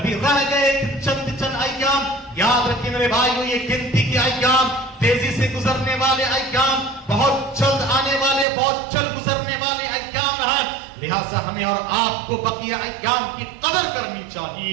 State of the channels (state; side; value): drops out; left; at 8.5 s